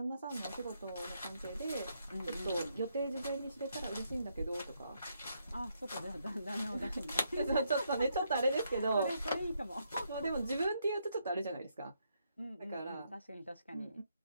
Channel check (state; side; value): inverted; both; correlation -0.77